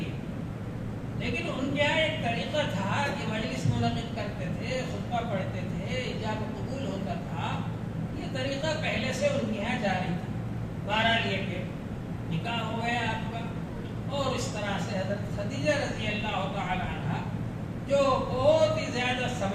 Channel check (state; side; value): identical; both; correlation 1.00